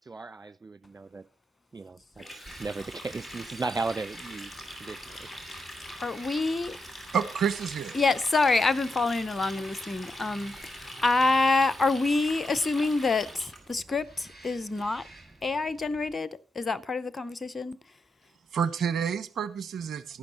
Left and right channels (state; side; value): normal; both; correlation 0.84